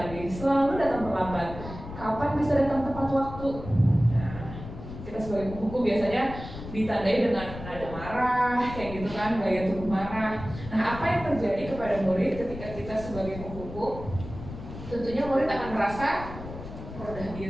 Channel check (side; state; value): left; noise; rumble, 11 dB below the sound